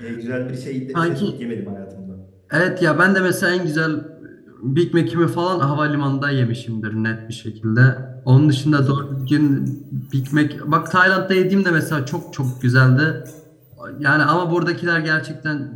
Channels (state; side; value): identical; both; correlation 1.00